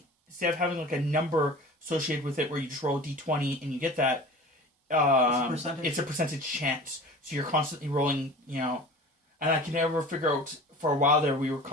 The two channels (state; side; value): normal; both; correlation 0.39